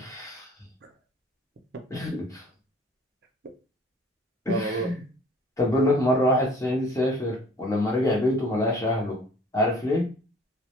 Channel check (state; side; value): normal; both; correlation 0.52